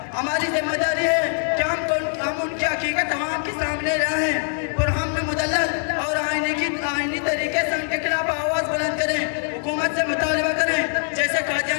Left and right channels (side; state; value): right; silent; 63 dB below the other